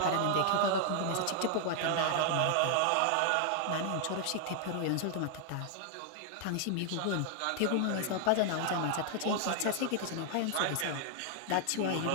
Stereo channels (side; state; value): both; different; correlation 0.00